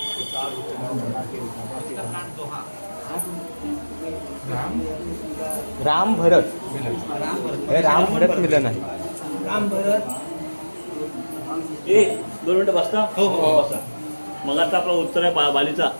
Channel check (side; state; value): both; inverted; correlation -1.00